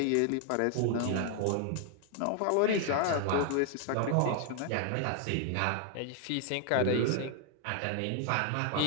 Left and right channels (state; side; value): different; both; correlation 0.00